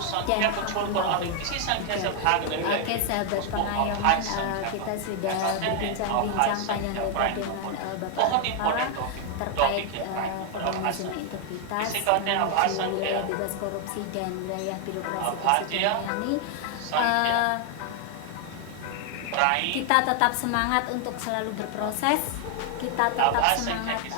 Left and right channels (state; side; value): different; both; correlation 0.00